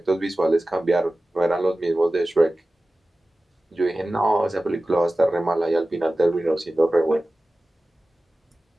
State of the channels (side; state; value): both; normal; correlation 0.96